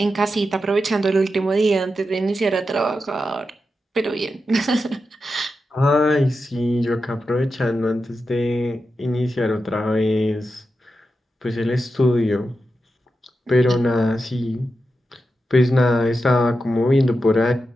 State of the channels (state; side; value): normal; both; correlation 0.89